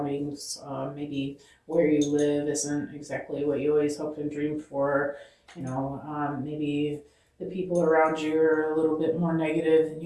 Maybe where you live isn't exactly what you always hoped and dreamed for. Maybe the people around you are a little bit more negative than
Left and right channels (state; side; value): identical; both; correlation 1.00